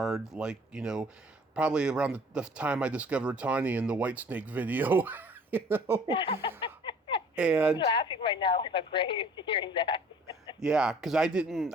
probably around the time I discovered Tawny in the Whitesnake video, you know? I'm And laughing right now in my grave hearing that. yeah, because I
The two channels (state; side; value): normal; both; correlation 0.52